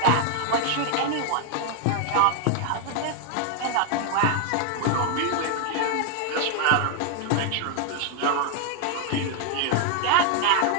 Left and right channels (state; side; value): different; both; correlation 0.00